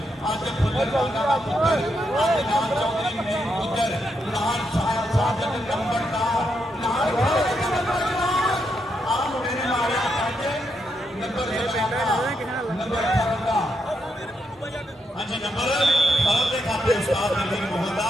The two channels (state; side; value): normal; both; correlation 0.81